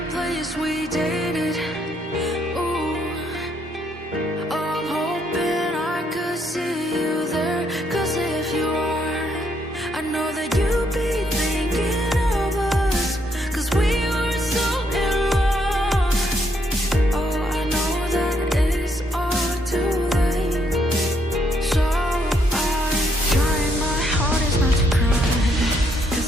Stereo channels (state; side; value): normal; both; correlation 0.73